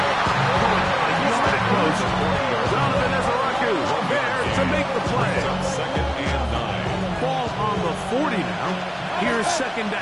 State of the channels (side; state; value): both; identical; correlation 1.00